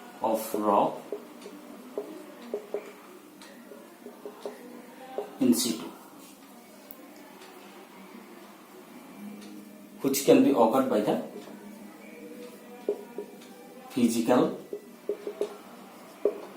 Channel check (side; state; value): both; identical; correlation 1.00